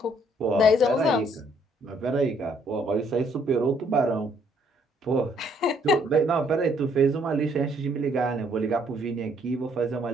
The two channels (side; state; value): both; normal; correlation 0.66